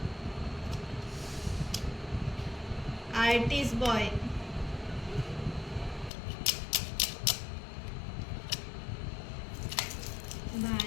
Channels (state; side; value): drops out; right; at 6.1 s